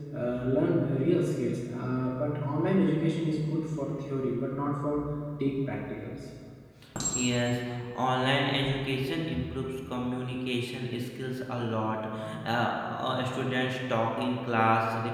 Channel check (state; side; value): identical; both; correlation 1.00